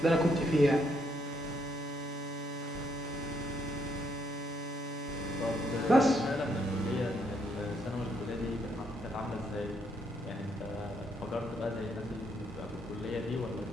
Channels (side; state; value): both; normal; correlation 0.74